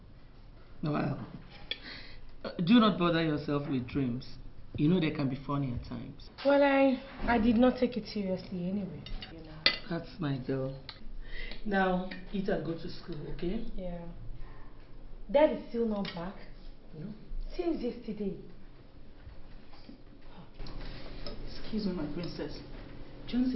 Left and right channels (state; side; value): identical; both; correlation 1.00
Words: Well, do not bother yourself with dreams. You know they can be funny at times. Well, I did not take it seriously anyway. You know. That's my girl. Now, eat and go to school, okay? Yeah. Dad is still not back. No. Since yesterday. Excuse me, my princess.